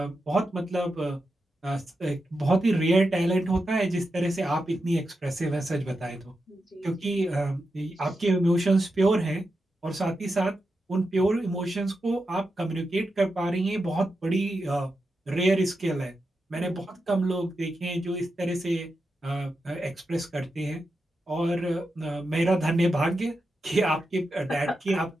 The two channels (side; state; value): both; normal; correlation 0.88